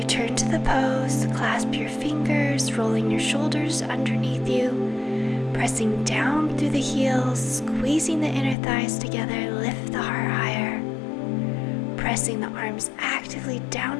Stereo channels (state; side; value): drops out; right; at 8.6 s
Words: to the pose, clasp your fingers, rolling your shoulders underneath you, pressing down through the heels, squeezing the inner thighs together, lift the heart higher. Pressing the arms actively down